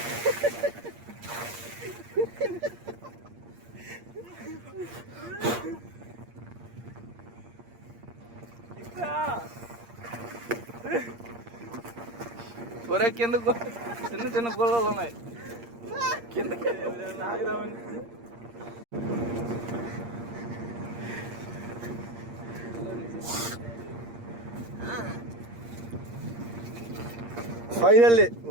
ఒరే కిందకు చిన్న చిన్న గోళాలు ఉన్నాయి కిందకి ఆగిరామని. Finally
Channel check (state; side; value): late; left; 8.6 ms